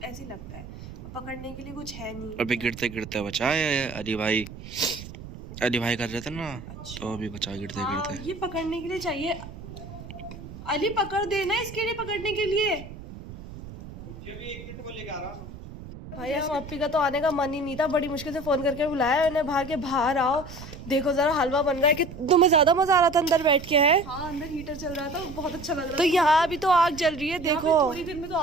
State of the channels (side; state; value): right; noise; rumble, 13 dB below the sound